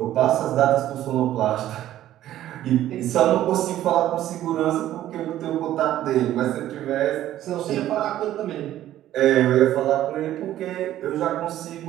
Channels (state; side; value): quieter; left; 13.0 dB